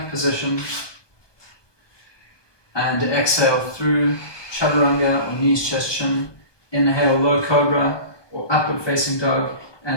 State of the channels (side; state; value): right; late; 1.2 ms